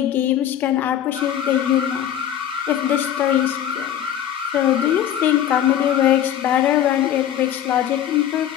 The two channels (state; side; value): quieter; right; 10.6 dB